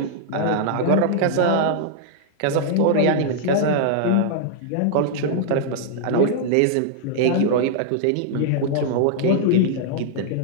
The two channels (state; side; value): different; both; correlation -0.01